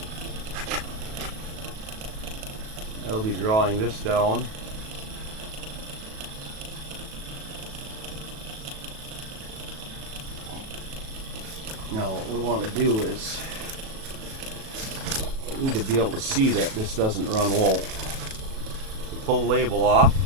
That'll be drawing this down. Now what we want to do is we need to be able to see that this doesn't run low. You pull the label off.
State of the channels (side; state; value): left; late; 37 ms